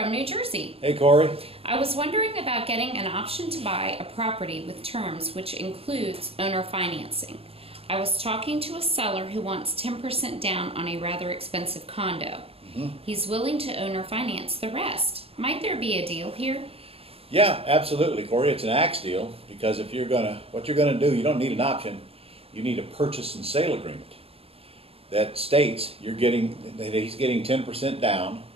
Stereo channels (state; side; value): late; left; 0.28 ms